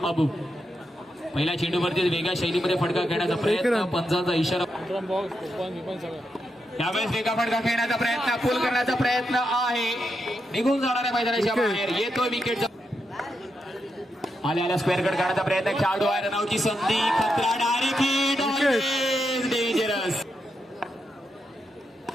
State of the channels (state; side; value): normal; both; correlation 0.84